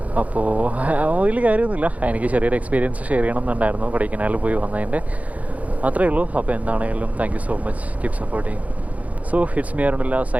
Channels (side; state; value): left; late; 0.070 ms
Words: അപ്പോൾ വലിയ കാര്യമൊന്നുമില്ല, എനിക്ക് ചെറിയൊരു എക്സ്പീരിയൻസ് ഷെയർ ചെയ്യണം എന്നുണ്ടായിരുന്നു കൊടൈക്കനാലിൽ പോയി വന്നതിൻ്റെ, അത്രയേ ഉള്ളൂ. അപ്പോൾ എന്താണെങ്കിലും thank you so much, keep supporting. So it's me അരുണില്ല